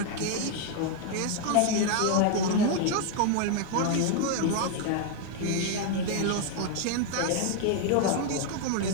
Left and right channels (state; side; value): different; both; correlation 0.01